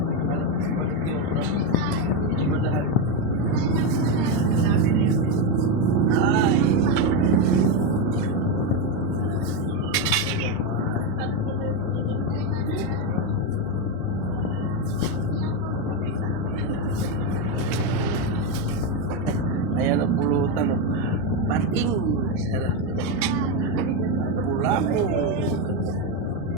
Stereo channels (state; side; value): normal; both; correlation 0.06